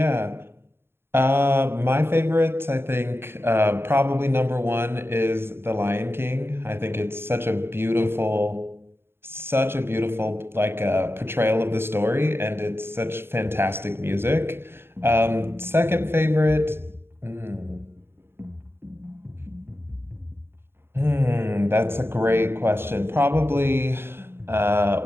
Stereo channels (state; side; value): late; left; 0.11 ms